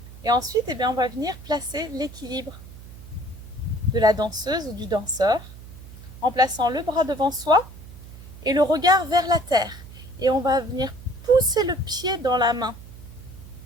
Et ensuite, eh bien, on va venir placer l'équilibre de la danseuse ou du danseur en plaçant le bras devant soi et le regard vers la terre. Et on va venir pousser le pied dans la main.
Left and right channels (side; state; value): right; noise; hum, 16 dB below the sound